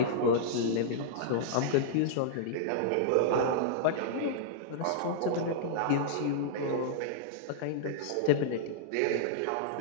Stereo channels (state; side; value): different; both; correlation -0.02